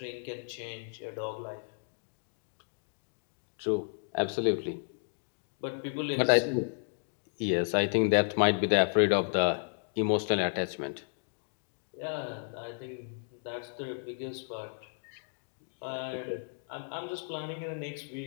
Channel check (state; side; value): silent; right; digital silence